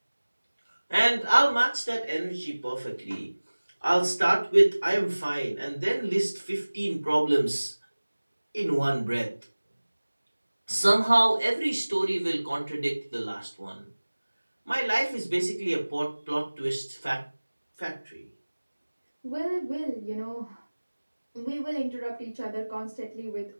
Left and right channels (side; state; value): both; inverted; correlation -1.00